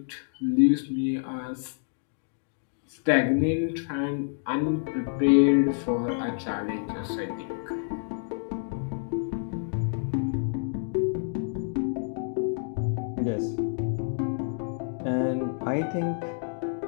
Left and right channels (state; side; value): silent; right; digital silence